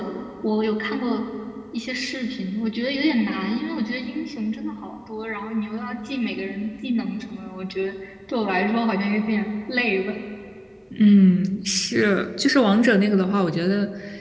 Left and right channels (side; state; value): both; identical; correlation 1.00